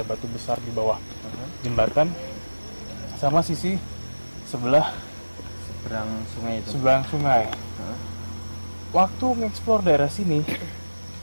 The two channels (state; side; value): inverted; both; correlation -1.00